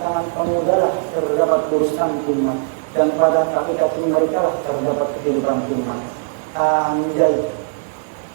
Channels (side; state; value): left; silent; 66 dB below the other